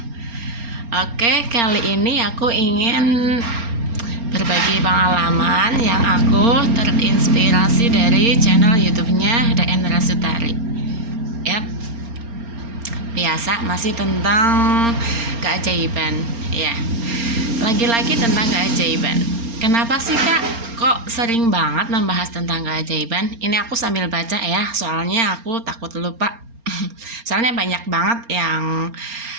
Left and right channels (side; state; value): left; late; 4.3 ms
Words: Oke, kali ini aku ingin berbagi pengalaman yang aku terinspirasi dari channel YouTube-nya DN Rasutari. Yap, biasa masih tentang keajaiban. Ya, lagi-lagi tentang keajaiban. Kenapa sih kak kok sering banget membahas tentang keajaiban? Ini aku sambil baca ya, soalnya aku takut lupa. Soalnya banyak banget yang